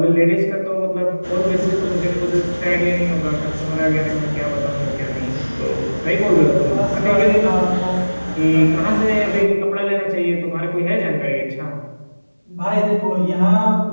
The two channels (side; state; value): both; inverted; correlation -1.00